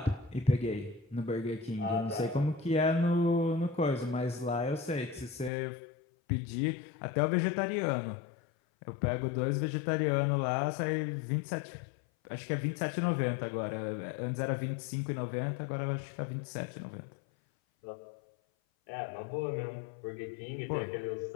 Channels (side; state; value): right; drops out; at 5.5 s